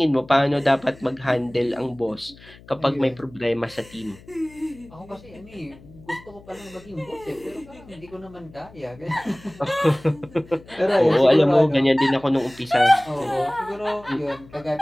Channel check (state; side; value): noise; left; hum, 22 dB below the sound